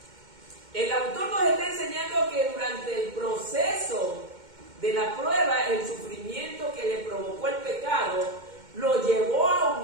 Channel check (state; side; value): late; left; 2.1 ms